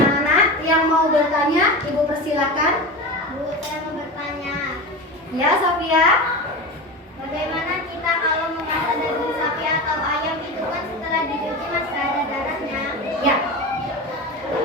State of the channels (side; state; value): both; normal; correlation 0.26